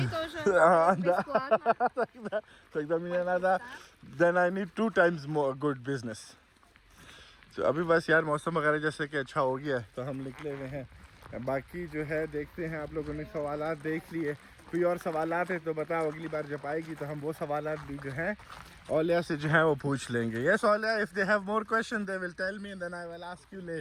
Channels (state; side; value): identical; both; correlation 1.00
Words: тоже Да. бесплатно. тогда мне надо. Then I need 2 times more good business. तो अभी बस यार मौसम वगैरह जैसे कि अच्छा हो गया, तो हम निकले हुए हैं। बाकी जो है देखते हैं। आप लोगों ने सवालात देख लिए, कोई और सवालात है तो बताओ, अगली बार जब आएगी तो हम वो सवालात भी जो हैं औलिया से जो है वो पूछ लेंगे। Yes Auliya, if they have more question they will tell me and then I will ask you